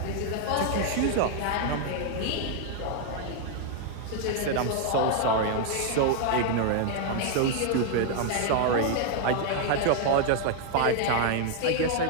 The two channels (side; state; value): both; different; correlation 0.00